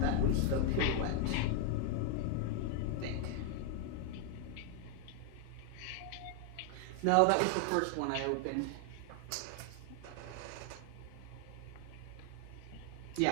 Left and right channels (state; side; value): different; both; correlation 0.00